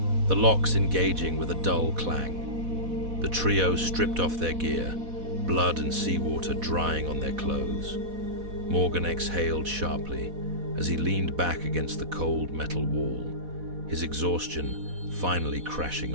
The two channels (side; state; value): left; late; 4.1 ms